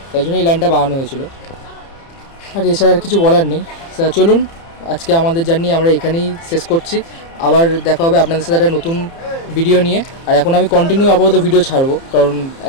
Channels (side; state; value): right; late; 30 ms